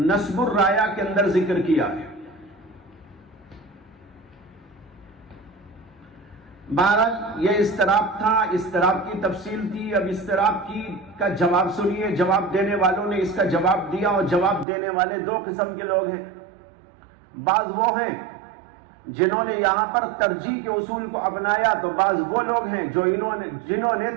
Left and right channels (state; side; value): drops out; left; at 14.7 s